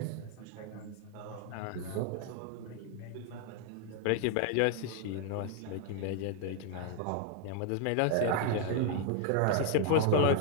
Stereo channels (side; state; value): both; different; correlation 0.00